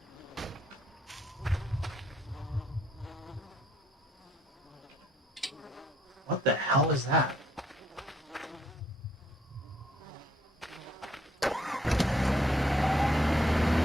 What the hell is that?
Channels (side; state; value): both; normal; correlation 0.68